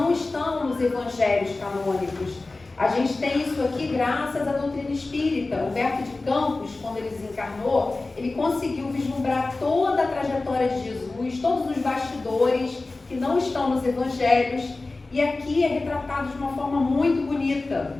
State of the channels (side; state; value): right; quieter; 3.3 dB